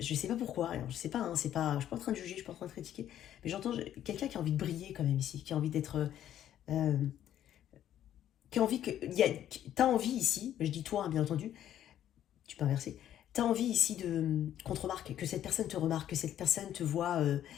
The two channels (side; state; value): right; quieter; 11.2 dB